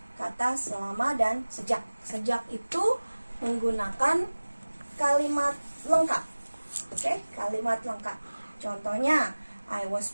kata selama dan sejak. Sejak itu menggunakan kalimat lengkap. Oke, kalimat lengkap. Contohnya, I was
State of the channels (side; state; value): both; inverted; correlation -1.00